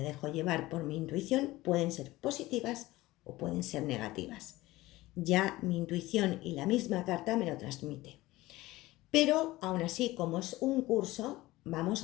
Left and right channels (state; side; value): quieter; right; 18.4 dB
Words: dejo llevar por mi intuición pueden ser positivas o pueden ser negativas. Ya mi intuición y la misma carta me lo transmite. Pero aún así, como es un curso, vamos